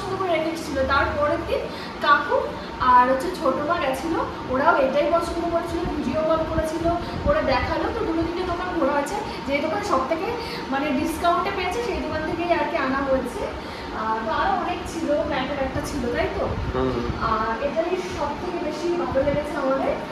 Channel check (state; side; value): identical; both; correlation 1.00